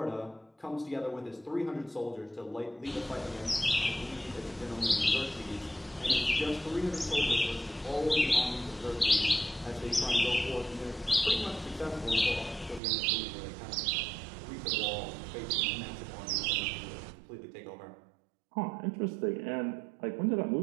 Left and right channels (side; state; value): left; drops out; at 12.8 s